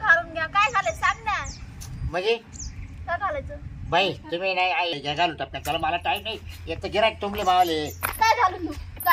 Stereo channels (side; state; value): both; identical; correlation 1.00